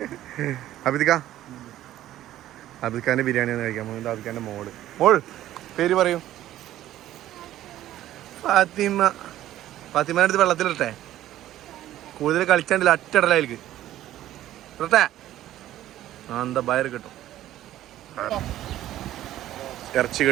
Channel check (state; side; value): quieter; left; 13.4 dB